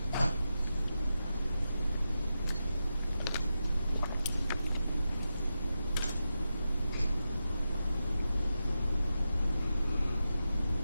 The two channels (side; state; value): both; inverted; correlation -0.90